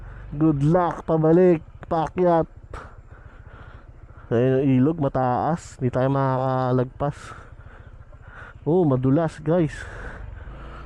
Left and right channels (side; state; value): both; identical; correlation 1.00